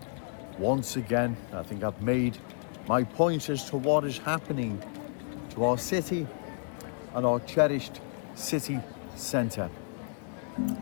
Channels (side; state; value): right; silent; 57 dB below the other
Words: once again. I think I've made my point as to what is happening to our city and our cherished city centre.